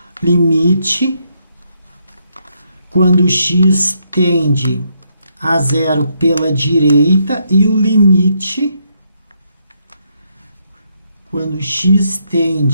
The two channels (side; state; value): both; inverted; correlation -0.76